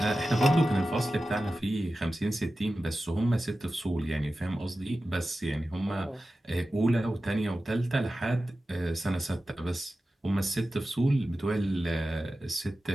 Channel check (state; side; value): normal; both; correlation 0.94